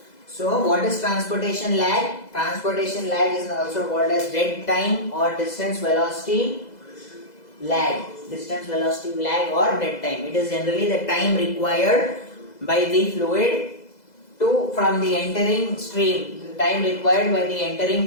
So what is transportation lag? Transportation lag is also called as dead time or distance velocity lag. Distance velocity lag or dead time. It is generally the time required by the fluid to from the entering stream. The time required by the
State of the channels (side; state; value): right; late; 2.0 ms